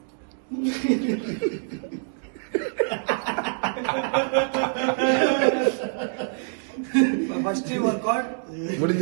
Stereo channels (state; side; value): silent; left; digital silence